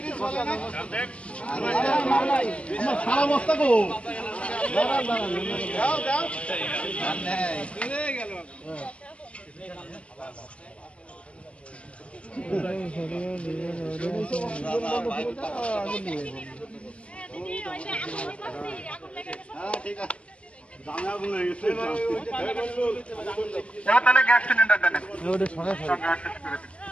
আমার সারা বস্তা গো ঠিক আছে। তাহলে গ্যাস সিলিন্ডার দেন।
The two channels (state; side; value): late; right; 0.061 ms